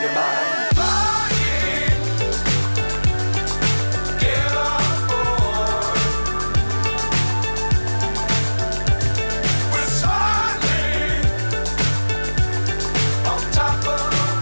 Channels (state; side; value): inverted; both; correlation -1.00